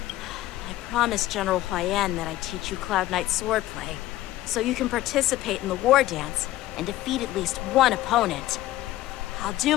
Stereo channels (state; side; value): quieter; right; 15.5 dB